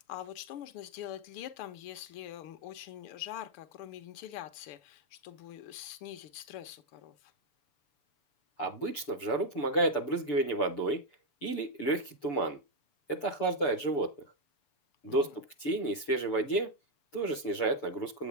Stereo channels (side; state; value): right; late; 6.9 ms